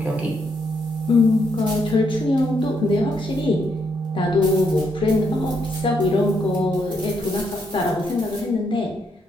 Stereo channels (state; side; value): normal; both; correlation 0.76